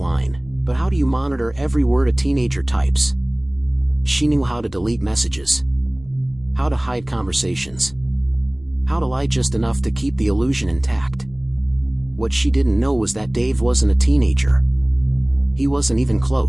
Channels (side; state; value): left; noise; rumble, 24 dB below the sound